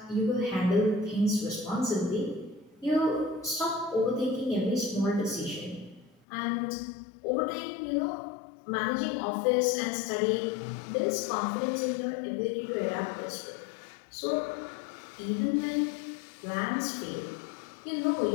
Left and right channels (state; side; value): drops out; right; at 6.2 s